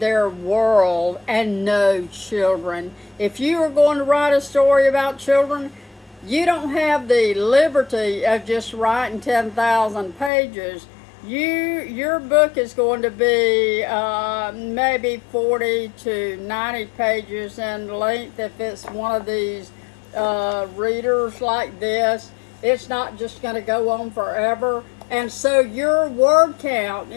world and know children. If you are going to write a story about children, you don't have the liberty of just writing 10,000 pages. Your book is going to be maybe 40 to 90 pages in length if it's one of these readers like this. It's not just going to go on forever. And so your word count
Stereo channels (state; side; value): drops out; right; at 10.3 s